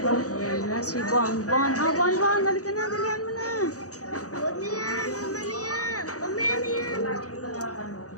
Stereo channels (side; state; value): right; late; 0.66 ms